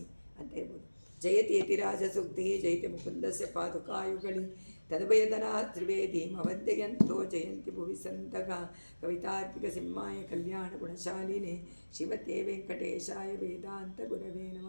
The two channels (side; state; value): both; inverted; correlation -1.00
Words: ಅಂತ ಹೇಳ್ಬೋದು. ಜಯತಿ ಯತಿರಾಜ ಸೂಕ್ತಿ ಜಯತಿ ಮುಕುಂದಸ್ಯ ಪಾದುಕಾಯುಗಳಿ ತದ್ಭಯದನಾ ತ್ರಿವೇದೀಮವಂದ್ಯಂತೋ ಜಯಂತಿ ಭುವಿ ಸಂತಗ ಕವಿತಾರ್ಕಿಕ ಸಿಂಹಾಯ ಕಲ್ಯಾಣ ಗುಣಶಾಲಿನೇ ಶಿವತೆ ವೆಂಕಟೇಶಾಯ ವೇದಾಂತ ಗುರವೇ